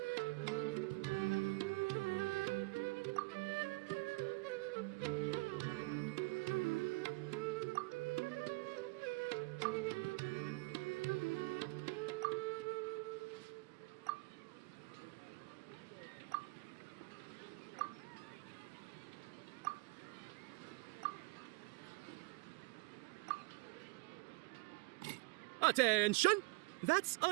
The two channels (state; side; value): quieter; left; 25.4 dB